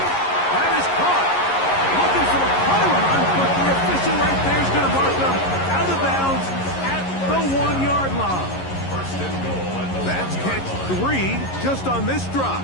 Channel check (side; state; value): right; late; 11 ms